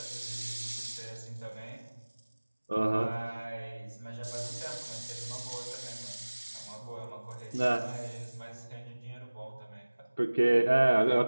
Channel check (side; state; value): both; inverted; correlation -1.00